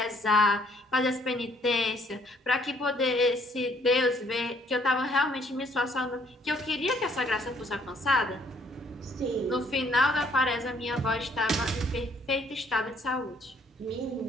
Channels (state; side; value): normal; both; correlation 0.64